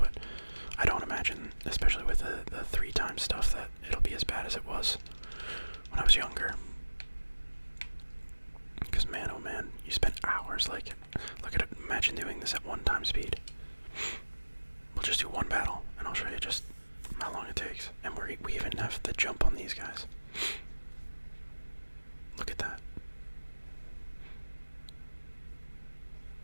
I don't imagine, especially with the 3 times stuff, that it'll be as bad as it was when I was younger. Because man, oh man, you spend hours like, look at it, imagine doing this at 1 time speed. We'll just do 1 battle, and I'll show you just how long it takes. And we even have the jump on these guys. Look at that.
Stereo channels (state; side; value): inverted; both; correlation -1.00